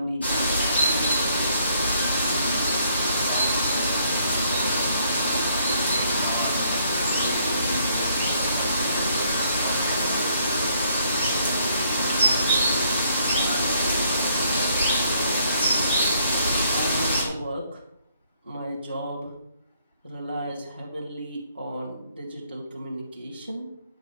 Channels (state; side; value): inverted; both; correlation -0.67